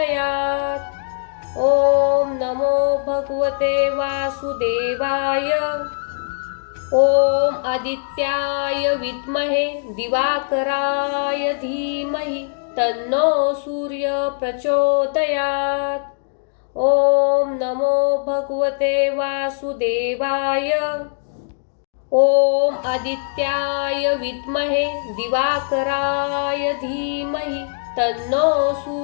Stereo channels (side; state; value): right; silent; digital silence